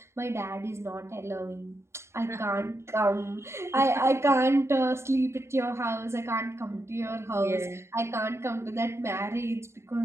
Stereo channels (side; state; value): left; late; 0.13 ms